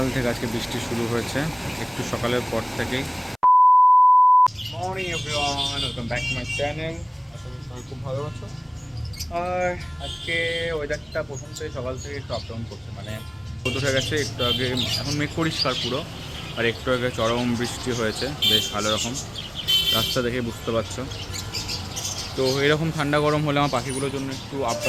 থেকে আজকে বৃষ্টি শুরু হয়েছে, একটু সকালের পর থেকেই। Morning everyone, welcome back to my channel. আশা করি সবাই খুব ভালো আছো। আর আজকে ওয়েদারটা প্রথম থেকে সকাল থেকে একটু আপ ডাউন করছে, মানে রোদ উঠে গেছে একটু আগে, এখন মেঘ পরিষ্কার পুরো, আর একটু আগে চরম বৃষ্টি হয়েছে বেশ ভালো রকম, রাস্তা দেখে বুঝতে পারছো। তো এরকম ঠান্ডা গরম হলে আমার পাখিগুলোর জন্য একটু আপ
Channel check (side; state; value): both; identical; correlation 1.00